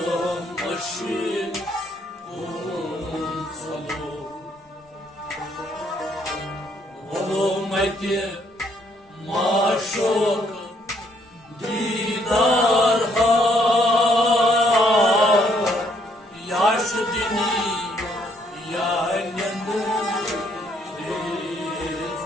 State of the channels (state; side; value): normal; both; correlation 0.68